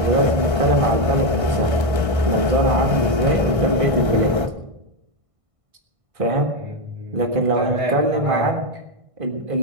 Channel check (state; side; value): late; left; 1.6 ms